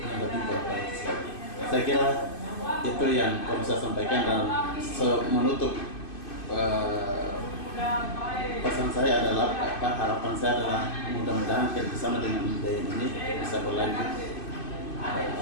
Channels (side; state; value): right; late; 2.5 ms